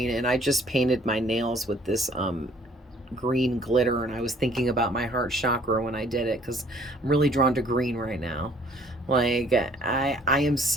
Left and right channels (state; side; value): normal; both; correlation 0.58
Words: and I just painted my nails with this green glitter, and I was thinking about my heart chakra when I did it, because I'm really drawn to green right now. Like, I am